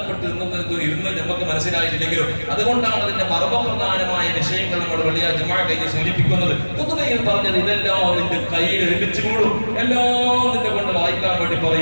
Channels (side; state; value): both; inverted; correlation -1.00